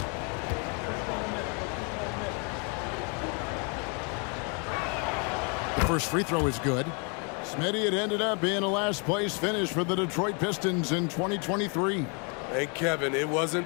First free throw is good. Smitty, it ended up being a last place finish for the Detroit Pistons in 2023. Hey, Kevin, it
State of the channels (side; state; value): right; quieter; 35.6 dB